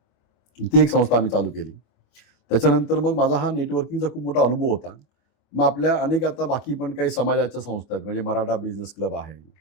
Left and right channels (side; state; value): right; late; 25 ms